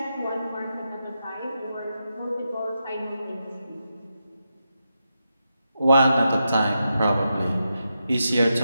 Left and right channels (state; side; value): inverted; both; correlation -0.86